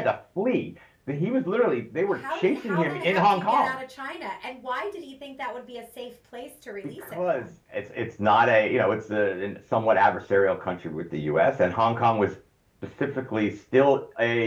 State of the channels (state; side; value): identical; both; correlation 1.00